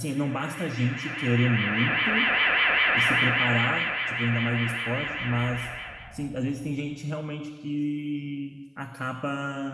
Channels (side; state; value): both; identical; correlation 1.00